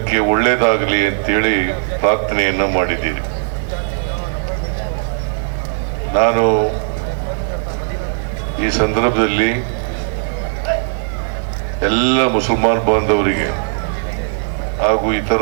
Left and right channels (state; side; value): silent; left; 67 dB below the other